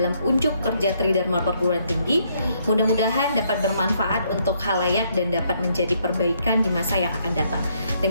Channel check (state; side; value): inverted; both; correlation -0.72